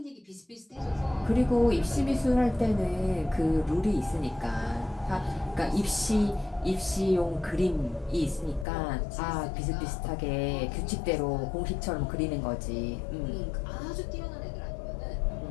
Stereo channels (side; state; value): right; drops out; at 8.7 s